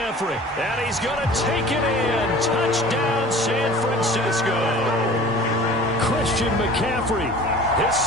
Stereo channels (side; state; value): both; normal; correlation 0.43